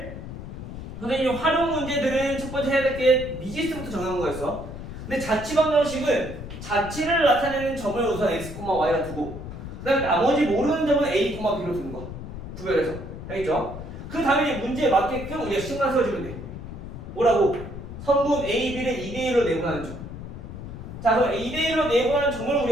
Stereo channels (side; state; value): left; noise; rumble, 10 dB below the sound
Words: 선생님 활용 문제들은 첫 번째 해야 될 게 미지수부터 정하는 거였어. 근데 자취 방정식은 자취를 나타내는 점을 우선 x, y라 두고, 그 다음에 나머지 모르는 점은 a, b로 두는 거야. 구별해서. 알겠죠? 그 다음에 이제 문제에 맞게끔 우리가 식만 써주면 돼. 뭐라고? 선분 a, b를 2대1로 내분하는 점. 자, 그럼 2대1로 내분하는 점을